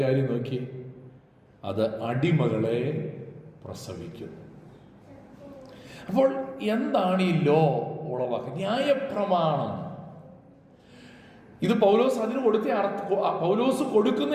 കാര്യം നോക്കി, അത് അടിമകളെ പ്രസവിക്കും. അപ്പോൾ എന്താണ് ഈ ലോ ഉളവാക്കുക? ന്യായപ്രമാണം. ഇത് പൗലോസ് അതിന് കൊടുത്ത പൗലോസ്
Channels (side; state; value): both; identical; correlation 1.00